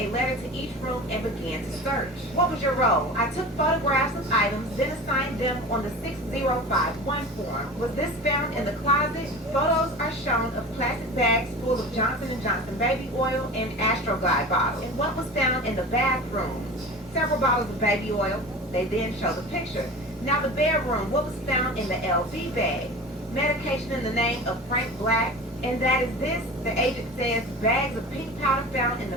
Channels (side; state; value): both; normal; correlation 0.34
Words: letter to each room and began to search. What was your role? I took photographs of items, then assigned them on the 6051 form. Was this found in the closet? Photos are shown of plastic bags full of Johnson & Johnson baby oil and Astroglide bottles. And what was found in the bathroom? Several bottles of baby oil. They then show the picture. Now the bedroom, what was found in the LV bag? Medication in the name of Frank Black. And that is this, the agent says, bags of pink powder found in